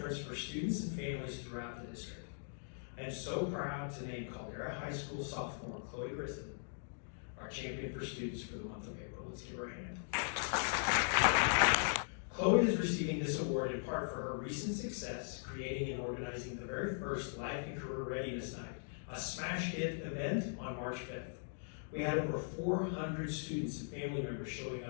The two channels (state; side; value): silent; right; digital silence